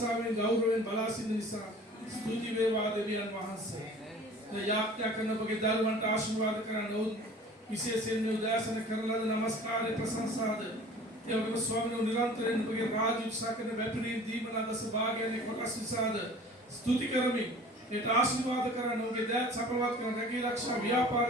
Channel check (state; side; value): normal; both; correlation 0.45